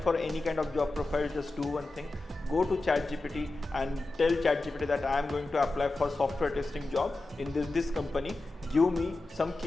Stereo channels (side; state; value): right; quieter; 3.1 dB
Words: any kind of job profile, just do one thing. Go to ChatGPT and tell ChatGPT that I am going to apply for software testing job in this company. Give me some